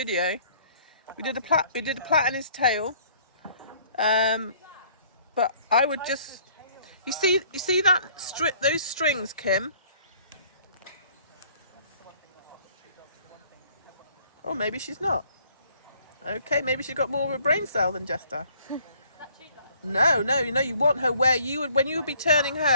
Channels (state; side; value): inverted; both; correlation -0.59